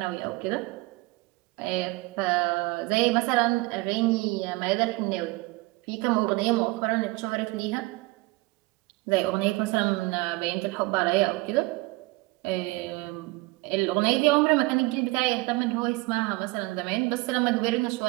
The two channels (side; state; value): left; quieter; 22.9 dB